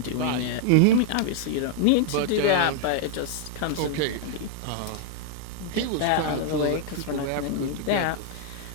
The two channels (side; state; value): both; different; correlation -0.01